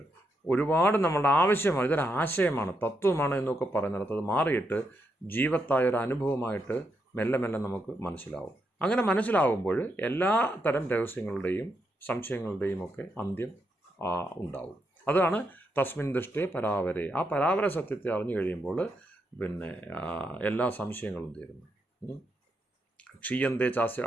ഒരുപാട് നമ്മളുടെ ആവശ്യമാണ്, ഇതൊരു ആശയമാണ്, തത്വമാണ് എന്നൊക്കെ പറയുന്നിടത്ത് അത് മാറിയിട്ട് ജീവത്തായ ഒരു അനുഭവമായിട്ട് മെല്ലെ മെല്ലെ നമുക്ക് മനസ്സിലാവും. അങ്ങനെ മനസ്സിലാവുമ്പോൾ എല്ലാ തരം രഹസ്യങ്ങളുടെയും സംശയങ്ങളുടെയും ഒക്കെ അന്ത്യം ഉണ്ടാവും. അതാണ് തസ്മിൻ ദൃഷ്ടേ പരാവരെ. ആ പരാവര സത്യത്തെ അറിഞ്ഞു കഴിയുമ്പോൾ പിന്നെ എല്ലാ സംശയങ്ങളും തീരുന്നു. ക്ഷീയന്തേ ചാസ്യ,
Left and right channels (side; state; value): both; normal; correlation 0.81